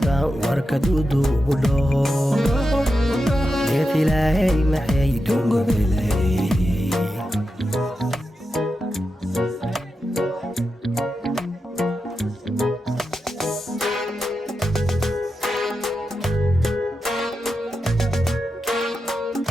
وركدودو بلو يا إلهي محي دونغو بلي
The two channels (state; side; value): normal; both; correlation 0.89